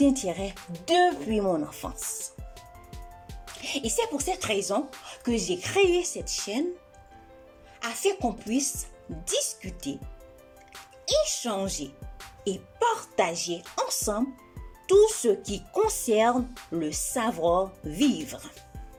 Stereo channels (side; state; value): both; identical; correlation 1.00